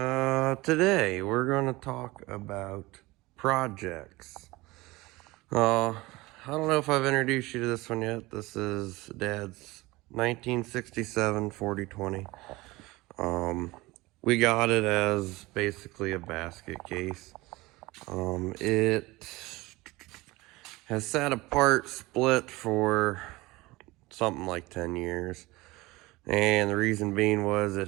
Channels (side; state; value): left; quieter; 21.1 dB